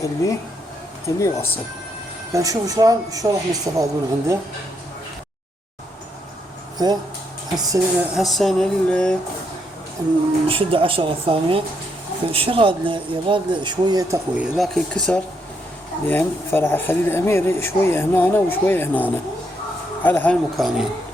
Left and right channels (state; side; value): normal; both; correlation 0.76